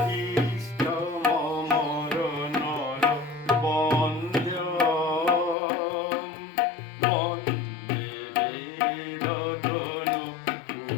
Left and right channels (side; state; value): right; drops out; at 5.6 s